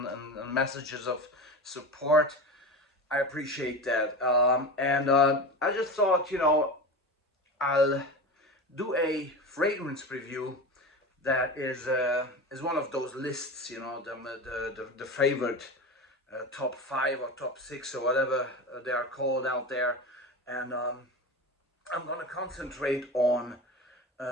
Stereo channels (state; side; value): normal; both; correlation 0.27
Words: messages of support. I appreciate that. I just thought, I'll do a fragrance review that is one of those lists, the favorite top 5 or top 6 or whatever they are called out there, and I'm going to concentrate on